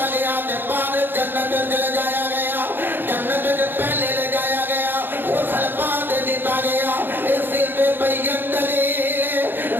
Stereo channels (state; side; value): late; left; 0.097 ms